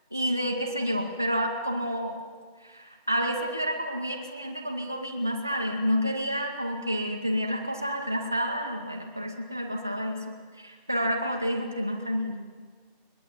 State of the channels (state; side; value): inverted; both; correlation -0.76